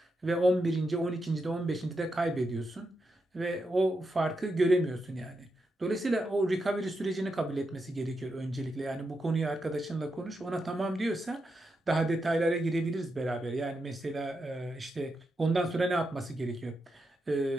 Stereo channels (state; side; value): normal; both; correlation 0.85